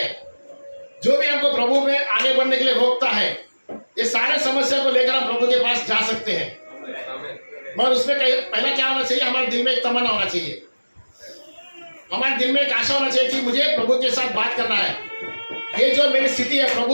जो भी हमको प्रभु में आगे बढ़ने के लिए रोकता है, ये सारे समस्या को लेकर हम प्रभु के पास जा सकते हैं। मगर उसमें पहला क्या होना चाहिए? हमारे दिल में एक तमन्ना होना चाहिए, हमारे दिल में एक आशा होना चाहिए कि मुझे प्रभु के साथ बात करना है। ये जो मेरी स्थिति है,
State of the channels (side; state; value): both; inverted; correlation -1.00